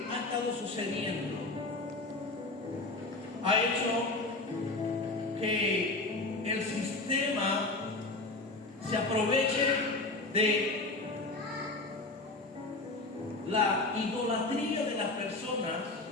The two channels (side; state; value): right; quieter; 3.1 dB